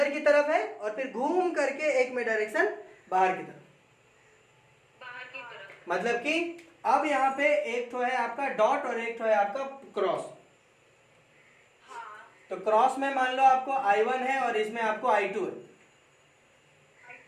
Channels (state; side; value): identical; both; correlation 1.00